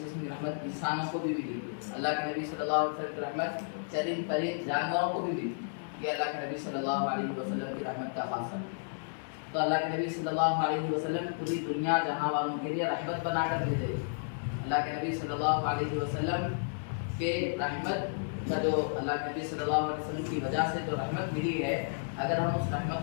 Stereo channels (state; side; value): silent; right; digital silence